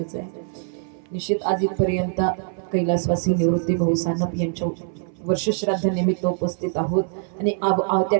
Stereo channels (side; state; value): left; silent; 61 dB below the other